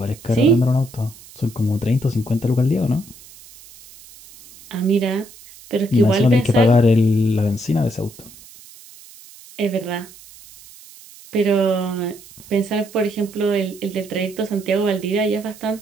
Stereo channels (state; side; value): noise; right; hiss, 21 dB below the sound